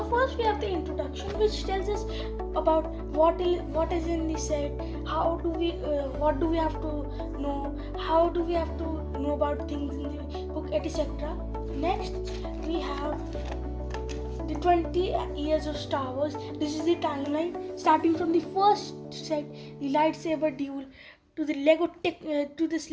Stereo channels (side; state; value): both; identical; correlation 1.00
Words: first we have the introduction, which tells us about what is in the set, what do we have to know, how do we have to know about things in the book, etc. Next we have the 20 years of Star Wars. This is the timeline starting from the first set, the lightsaber duel, to the to this